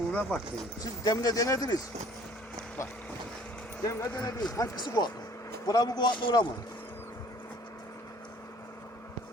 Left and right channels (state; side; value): normal; both; correlation 0.54